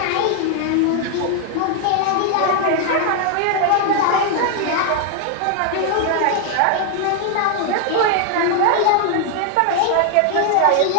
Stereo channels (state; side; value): different; both; correlation 0.00